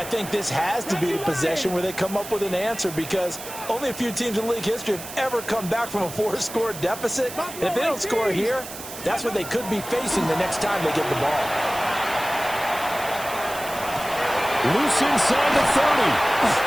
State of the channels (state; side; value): noise; right; hiss, 12 dB below the sound